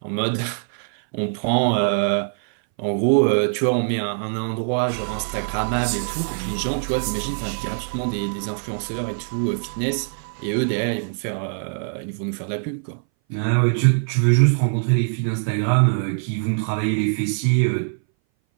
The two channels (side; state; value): left; silent; 60 dB below the other